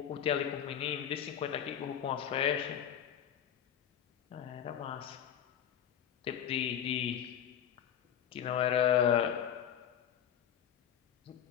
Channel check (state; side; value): quieter; right; 9.5 dB